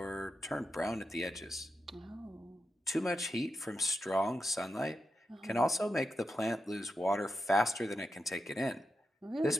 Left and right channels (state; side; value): normal; both; correlation 0.87